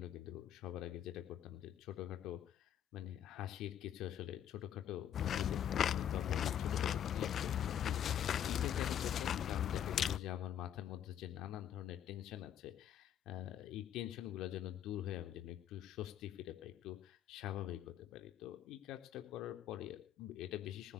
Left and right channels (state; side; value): quieter; right; 10.0 dB